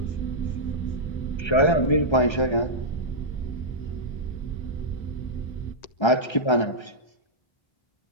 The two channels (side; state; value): right; late; 1.3 ms